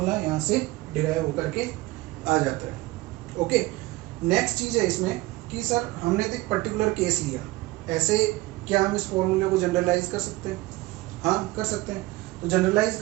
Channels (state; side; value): quieter; left; 20.0 dB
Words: यहाँ से डिराइव होकर के आ जाता है। ओके, नेक्स्ट चीज है इसमें कि सर हमने तो एक पर्टिकुलर केस लिया, ऐसे क्या हम इस फॉर्मूले को जनरलाइज कर सकते हैं? हाँ कर सकते हैं। तो जनरलाइज